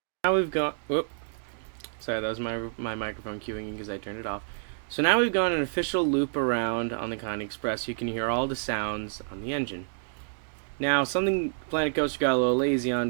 Now we've got... Whoop. Sorry, that was my microphone cueing because I turned it off. So now we've got an official loop around on the Connie Express. You can hear all the sounds on the engine. Now, something Planet Coaster got a little lazy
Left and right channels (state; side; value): silent; left; digital silence